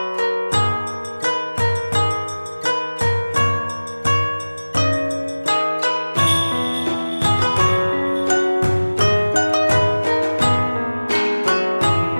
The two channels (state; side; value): inverted; both; correlation -1.00